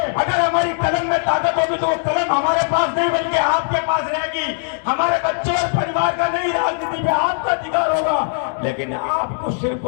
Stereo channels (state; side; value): silent; right; digital silence